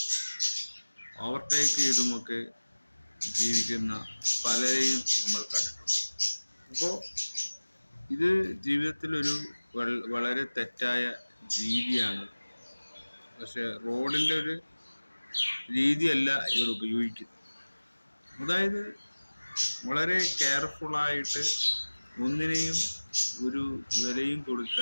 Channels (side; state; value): both; inverted; correlation -1.00